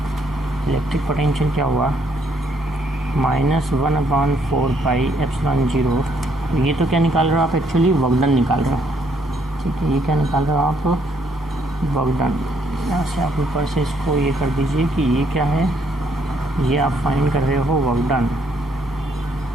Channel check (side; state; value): both; normal; correlation 0.70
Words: इलेक्ट्रिक पोटेंशियल क्या हुआ, -1/4πε0। ये तो क्या निकाल रहे हो आप, एक्चुअली वर्क डन निकाल रहे हो, ठीक है। ये क्या निकाल रहे हो आप, वर्क डन। यहाँ से आप ऊपर से इसको ये कर दीजिए कि ये क्या है, ये आप फाइंड कर रहे हो वर्क डन,